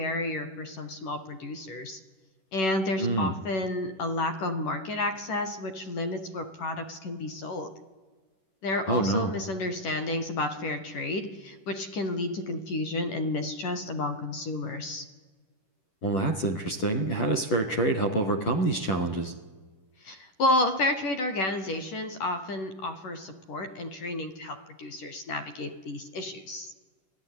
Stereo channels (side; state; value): right; late; 11 ms